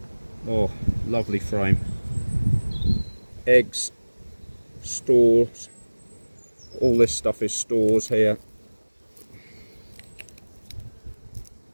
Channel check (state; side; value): inverted; both; correlation -1.00